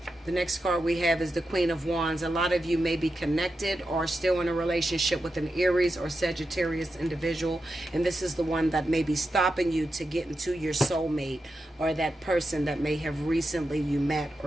The next card we have is the Queen of Wands. A lot of you may be connected or still in a relationship with an Aries or Sagittarius individual, and this is the one that may be stopping you to get into your soulmate, or that person that may have recently you met,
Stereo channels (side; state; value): both; normal; correlation 0.89